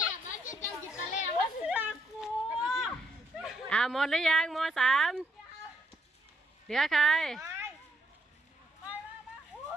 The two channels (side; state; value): both; normal; correlation 0.75